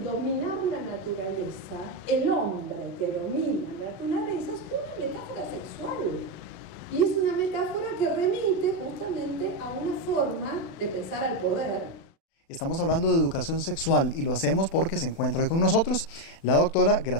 dominar la naturaleza, el hombre que domina la naturaleza, es una metáfora sexual. Y es una metáfora que remite justamente a una forma de pensar al poder. Estamos hablando de educación sexual y lo hacemos porque se encuentra hoy con nosotros la doctora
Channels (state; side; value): late; right; 36 ms